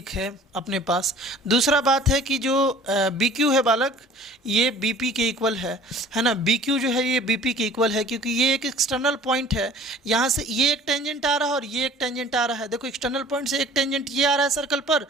है अपने पास। दूसरा बात है कि जो बी क्यू है बालक, ये बी पी के इक्वल है ना। बी क्यू जो है ये बी पी के इक्वल है, क्योंकि ये एक एक्सटर्नल पॉइंट है। यहाँ से ये एक टेंजेंट आ रहा है और ये एक टेंजेंट आ रहा है। देखो एक्सटर्नल पॉइंट से एक टेंजेंट ये आ रहा है सर्कल पर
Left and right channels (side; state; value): both; normal; correlation 0.48